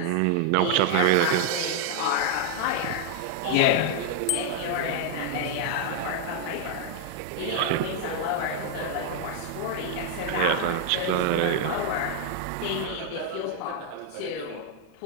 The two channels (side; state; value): both; different; correlation 0.00